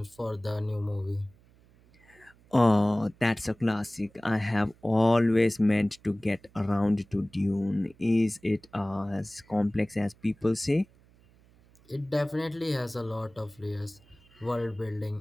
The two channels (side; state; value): right; noise; hum, 29 dB below the sound